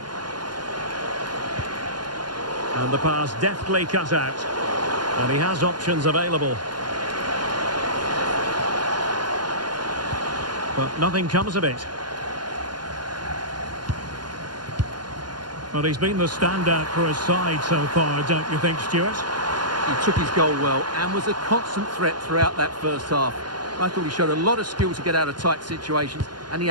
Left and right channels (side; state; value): left; late; 0.71 ms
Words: And the pass deftly cut out. And he has options available. But nothing comes of it. Well, he's been the standout for his side so far, don't you think, Stuart? He took his goal well and was a constant threat throughout that first half. I thought he showed a lot of skill to get out of tight situations, and he